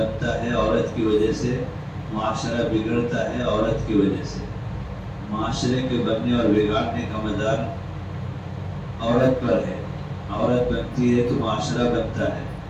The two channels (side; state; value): both; identical; correlation 1.00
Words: ہے عورت کی وجہ سے, معاشرہ بگڑتا ہے عورت کی وجہ سے. معاشرے کے بننے اور بگاڑنے کا مدار عورت پر ہے. عورت بنتی ہے تو معاشرہ بنتا ہے.